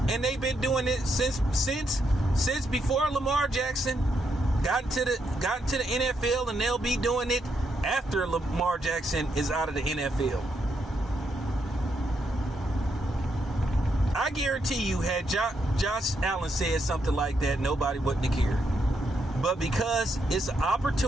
and they've been doing it since before Lamar Jackson got into the NFL, and they'll be doing it after Lamar Jackson is out of the NFL. I guarantee you, had Josh Allen said something like that, nobody wouldn't have cared. But because it's an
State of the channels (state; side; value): normal; both; correlation 0.79